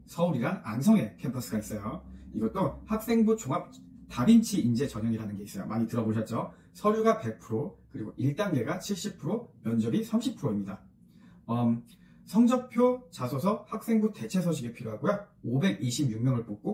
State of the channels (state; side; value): identical; both; correlation 1.00